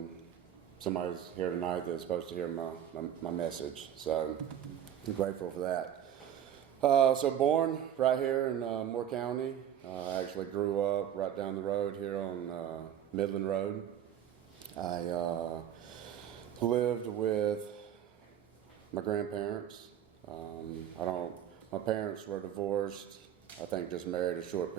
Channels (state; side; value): quieter; left; 10.0 dB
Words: somebody's here tonight that's supposed to hear my message, so I'm grateful for that. So born right here in Moore County. I actually grew up right down the road here on Midland Road. I lived with my grandparents. My parents were divorced, I think just married a short